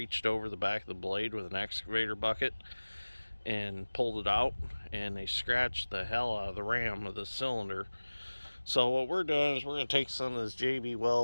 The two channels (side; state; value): both; inverted; correlation -1.00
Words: over the back of the blade with an excavator bucket and pulled it out, and they scratched the hell out of the ram of the cylinder. So what we're doing is we're going to take some of this JB